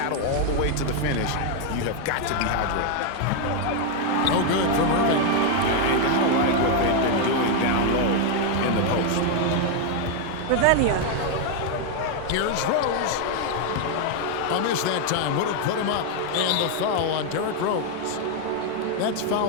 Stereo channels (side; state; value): both; different; correlation 0.00